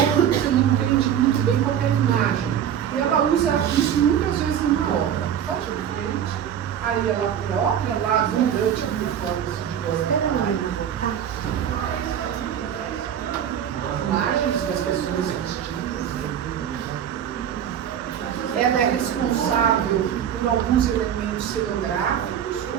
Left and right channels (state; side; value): quieter; left; 9.4 dB